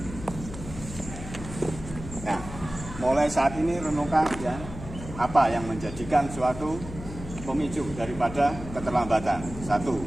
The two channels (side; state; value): left; noise; hum, 11 dB below the sound